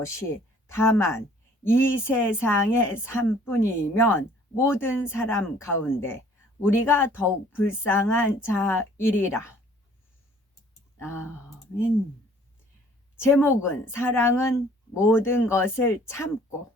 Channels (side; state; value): both; normal; correlation 0.56